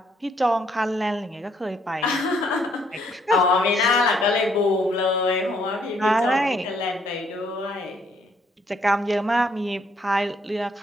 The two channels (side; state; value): both; normal; correlation 0.69